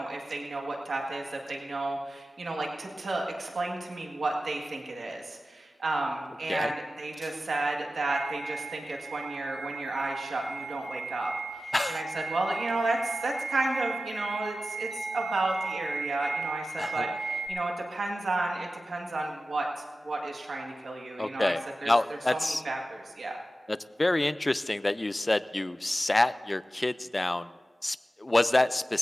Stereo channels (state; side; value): normal; both; correlation 0.94